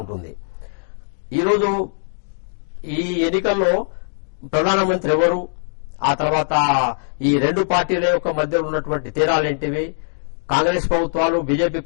ఉంటుంది. ఈరోజు ఈ ఎన్నికల్లో ప్రధానమంత్రి ఎవరు, ఆ తర్వాత ఈ రెండు పార్టీల యొక్క మధ్య ఉన్నటువంటి తేడాలేంటివి, కాంగ్రెస్ ప్రభుత్వాలు, బీజేపీ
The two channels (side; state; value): right; silent; digital silence